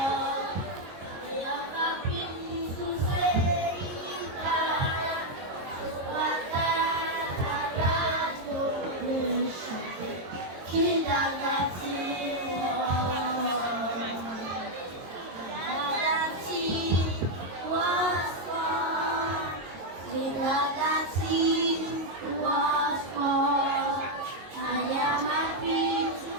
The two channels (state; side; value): late; left; 22 ms